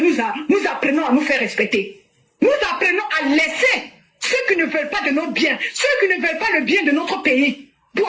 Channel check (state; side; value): identical; both; correlation 1.00